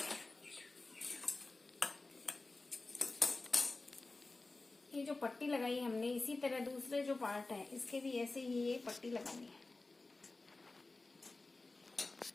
ये जो पट्टी लगाई हमने, इसी तरह दूसरे जो पार्ट है इसके भी ऐसे ही ये पट्टी लगानी है।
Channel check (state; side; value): quieter; right; 3.3 dB